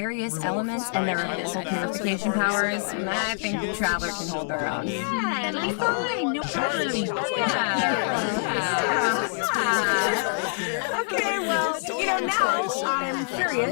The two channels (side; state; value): right; silent; digital silence